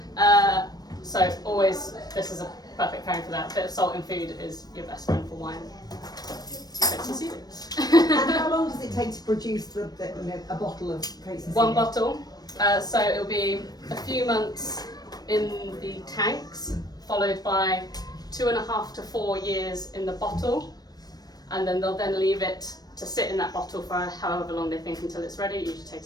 So always, this is a perfect pairing for that. A bit of salt in food is your best friend for wine. Coates and Seely. And how long does it take to produce a bottle of Coates and Seely? One bottle. So it'll be a few months in the tanks, followed by 2.5 to 4 years in the bottle. and then they'll then leave it to sit in that bottle for however long they think until it's ready. It usually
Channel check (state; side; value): late; right; 0.19 ms